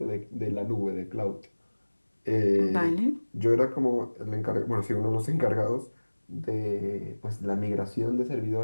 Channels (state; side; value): inverted; both; correlation -1.00